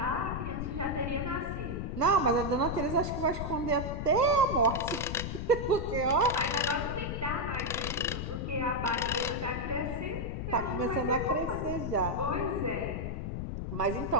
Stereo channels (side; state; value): left; noise; rumble, 4 dB below the sound